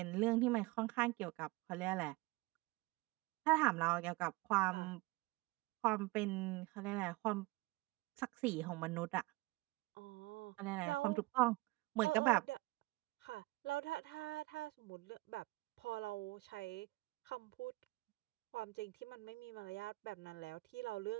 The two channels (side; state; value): left; quieter; 22.0 dB